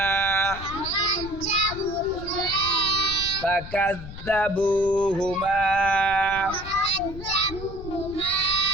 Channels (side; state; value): left; noise; rumble, 12 dB below the sound